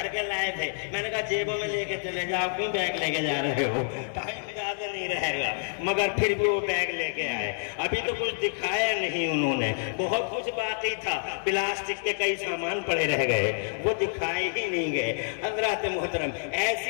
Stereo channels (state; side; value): silent; right; digital silence